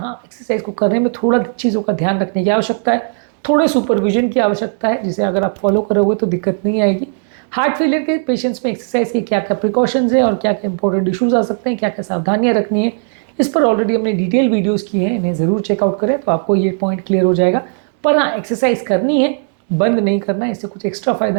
एक्सरसाइज को करने में थोड़ा चीज़ों का ध्यान रखने की आवश्यकता है, थोड़े सुपरविजन की आवश्यकता है, जिसे अगर आप फॉलो करोगे तो दिक्कत नहीं आएगी। हार्ट फेलियर के पेशेंट्स में एक्सरसाइज के क्या क्या प्रिकॉशंस हैं और क्या क्या इंपॉर्टेंट इश्यूज आ सकते हैं, क्या क्या सावधानियां रखनी है, इस पर ऑलरेडी हमने डिटेल वीडियोस किए हैं, इन्हें ज़रूर चेकआउट करें तो आपको ये पॉइंट क्लियर हो जाएगा। पर हाँ, एक्सरसाइज करनी है, बंद नहीं करना है, इससे कुछ एक्स्ट्रा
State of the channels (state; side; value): silent; left; digital silence